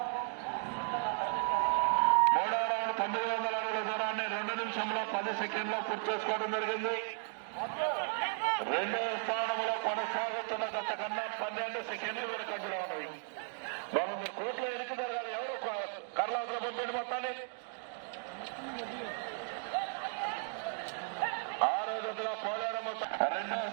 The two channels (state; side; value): silent; left; 54 dB below the other